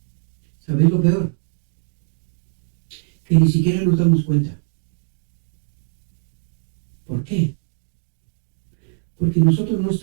¿Sabéis lo peor? Que ni siquiera nos damos cuenta. ¿Por qué? Porque nosotros no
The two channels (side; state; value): left; silent; digital silence